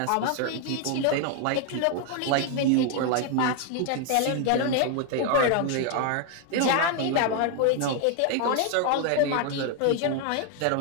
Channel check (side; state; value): both; different; correlation 0.01